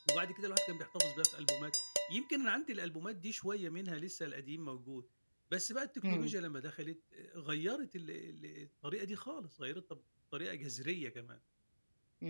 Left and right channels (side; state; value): both; inverted; correlation -1.00